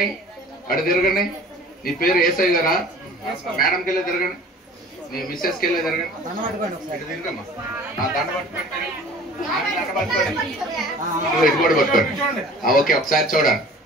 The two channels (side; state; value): both; normal; correlation 0.46